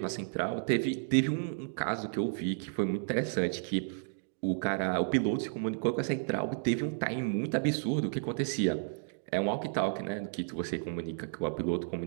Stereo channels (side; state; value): left; silent; digital silence